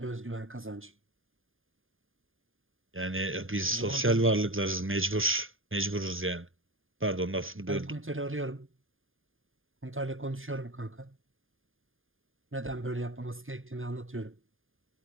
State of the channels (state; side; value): late; left; 0.59 ms